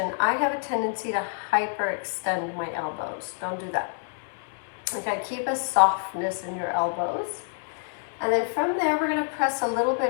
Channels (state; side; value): silent; right; digital silence